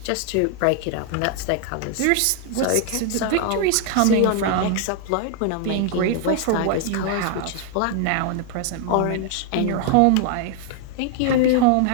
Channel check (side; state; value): both; different; correlation 0.00